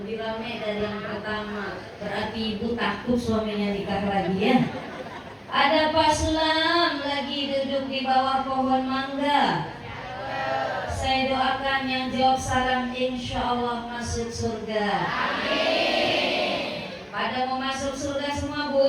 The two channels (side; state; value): both; identical; correlation 1.00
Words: ramai dari yang pertama, berarti ibu takut suaminya nikah lagi, ya. Ada Pak Sulam lagi duduk di bawah pohon mangga. Saya doakan yang jawab salam insya Allah masuk surga. Amin. Pada mau masuk surga semua,